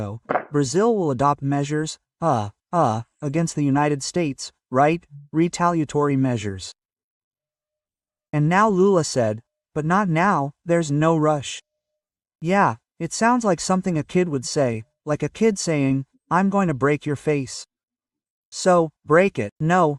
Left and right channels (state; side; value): identical; both; correlation 1.00